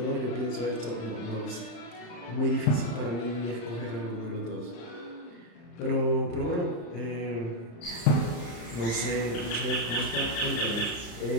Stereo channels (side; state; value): right; late; 34 ms